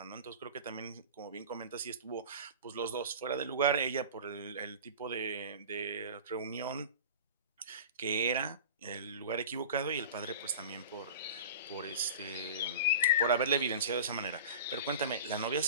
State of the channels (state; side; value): inverted; both; correlation -0.34